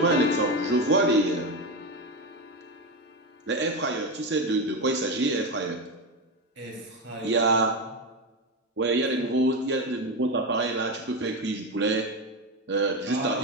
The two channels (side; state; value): both; normal; correlation 0.15